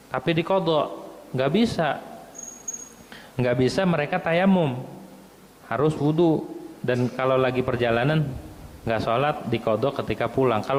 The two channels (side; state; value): both; identical; correlation 1.00